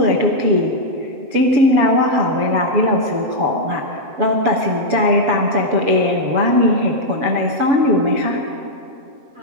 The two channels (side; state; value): left; late; 7.6 ms